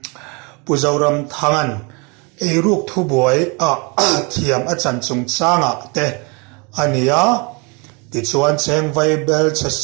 puzoram thangan eruk thubuai a thiam a chanchung changa te ania ti chuan cheng vai bel che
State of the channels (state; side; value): quieter; left; 30.7 dB